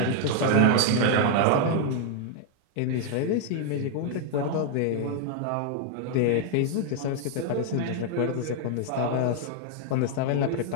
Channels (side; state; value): both; different; correlation 0.00